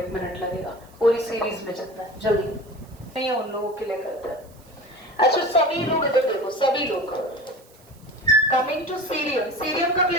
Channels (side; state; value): right; noise; hiss, 28 dB below the sound